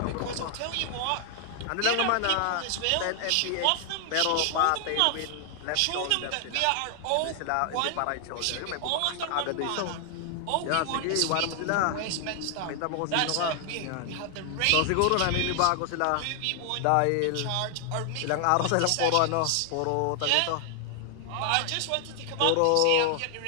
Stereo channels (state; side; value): different; both; correlation 0.00